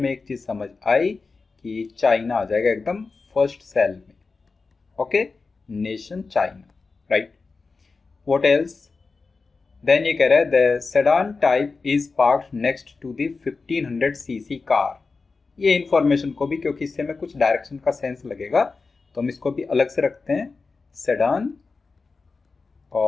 एक चीज समझ आई कि चाइना आ जाएगा एकदम फर्स्ट सेल में. Okay, nation China, right. What else? Then ये कह रहा है the sedan type is parked next to the 1500 CC car. ये इंफॉर्मेशन को भी, क्योंकि इससे हमें कुछ डायरेक्शन का सेंस लगेगा, तो हम इसको भी अलग से रखते हैं. सेडान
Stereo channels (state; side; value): quieter; right; 4.2 dB